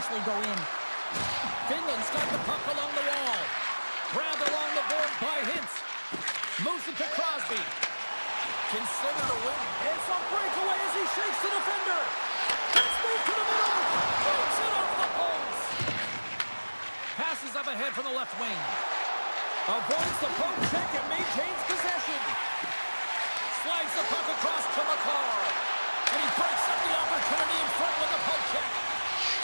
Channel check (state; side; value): inverted; both; correlation -1.00